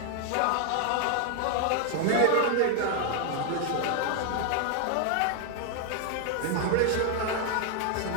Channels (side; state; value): both; different; correlation 0.00